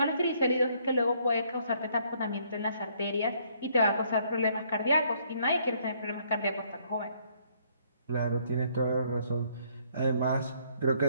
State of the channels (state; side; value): inverted; both; correlation -0.67